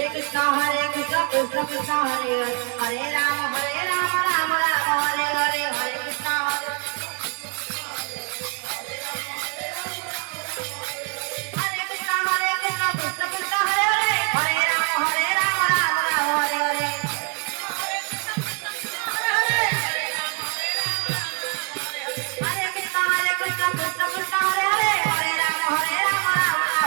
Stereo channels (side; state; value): left; quieter; 37.1 dB